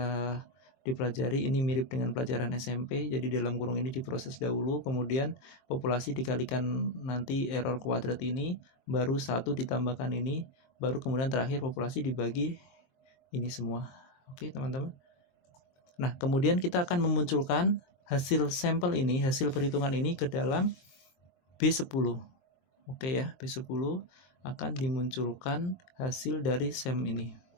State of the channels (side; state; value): right; late; 23 ms